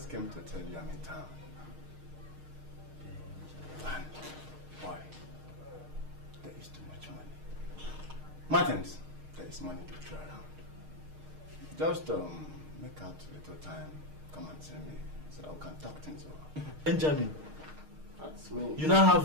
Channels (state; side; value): late; left; 6.5 ms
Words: came to tell you I'm in town. And why? There is too much money. Martins, there is money to throw around. Just make out a little time, come and see me, so that we can talk things over. Benjamin, that's me. You now